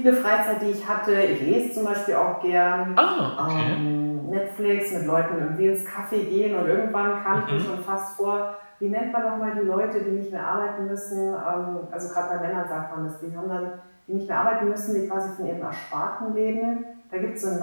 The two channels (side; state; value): both; inverted; correlation -1.00